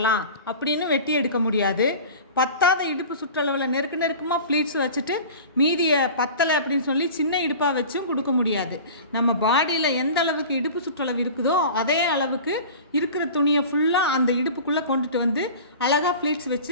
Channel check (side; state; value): both; inverted; correlation -0.38